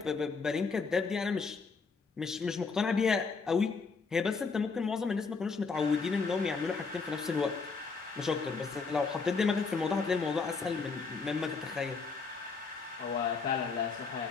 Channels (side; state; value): right; quieter; 4.7 dB